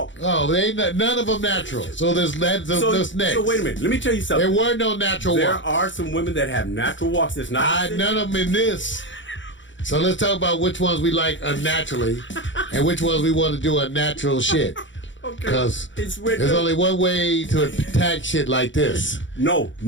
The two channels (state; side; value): late; right; 0.55 ms